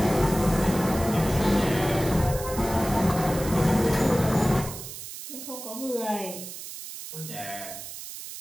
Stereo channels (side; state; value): right; noise; hiss, 11 dB below the sound